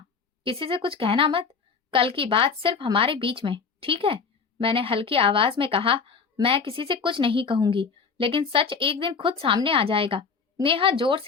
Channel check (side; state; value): right; quieter; 5.4 dB